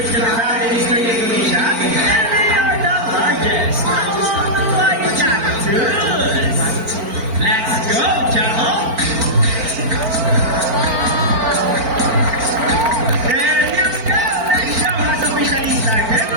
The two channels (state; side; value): late; left; 4.4 ms